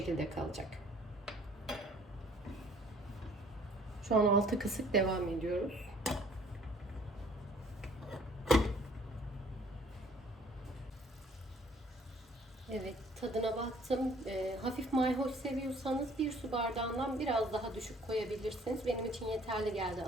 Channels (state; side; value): normal; both; correlation 0.57